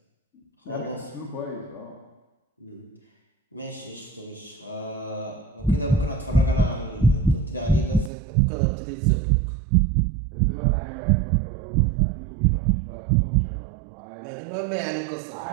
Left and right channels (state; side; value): drops out; left; at 8.1 s